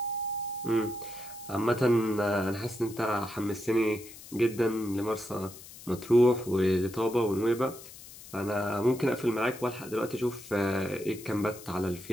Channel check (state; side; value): noise; left; hiss, 17 dB below the sound